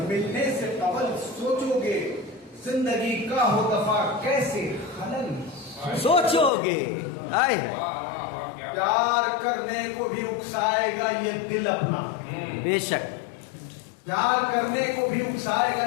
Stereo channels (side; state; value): right; drops out; at 6.5 s